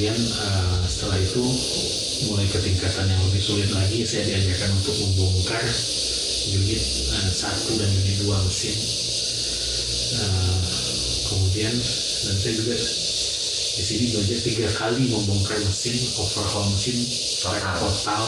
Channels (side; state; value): both; identical; correlation 1.00